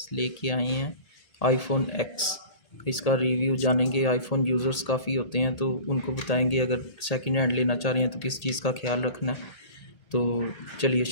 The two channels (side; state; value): right; late; 1.8 ms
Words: लेके आए हैं आईफोन एक्स। इसका रिव्यू जानेंगे। आईफोन यूज़र्स काफ़ी होते हैं तो उनको बताएंगे अगर सेकंड हैंड लेना चाह रहे हैं तो किस चीज़ का ख्याल रखना है। तो चलिए